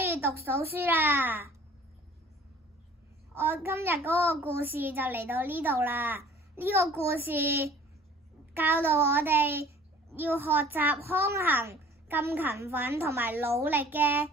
以讀到書啦。我今日嗰個故事就嚟到呢度啦。呢個故事教導我哋要學習康衡咁勤奮同埋努力嘅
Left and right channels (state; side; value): normal; both; correlation 0.50